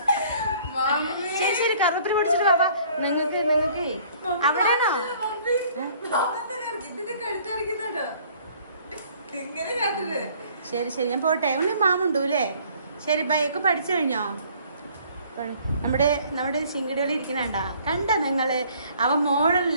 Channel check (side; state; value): both; inverted; correlation -0.57